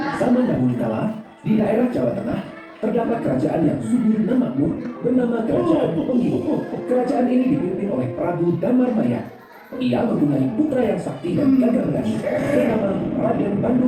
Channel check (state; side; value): identical; both; correlation 1.00